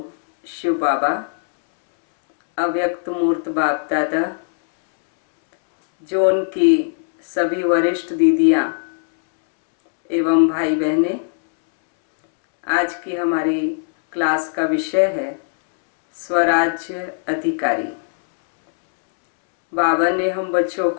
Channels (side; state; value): right; silent; 66 dB below the other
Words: शिव बाबा, अव्यक्त मूर्त बाप दादा, जो उनकी सभी वरिष्ठ दीदियाँ एवं भाई बहनें, आज की हमारी क्लास का विषय है स्वराज्य अधिकारी। बाबा ने हम बच्चों